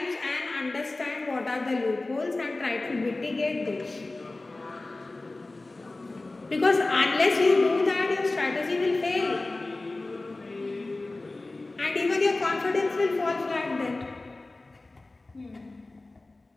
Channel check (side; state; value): right; quieter; 3.1 dB